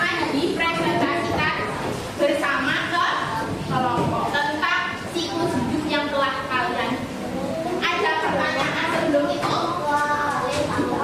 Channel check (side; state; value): both; identical; correlation 1.00